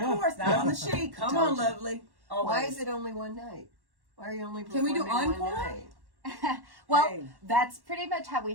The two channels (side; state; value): left; late; 1.1 ms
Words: not on the sheet. Come on, lovely. Always. Why is it only one night? Why are you only Can we do performing one encore? night? Well, Hey. that's pretty much how we